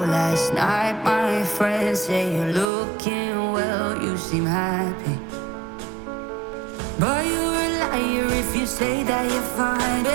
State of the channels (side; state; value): left; drops out; at 2.7 s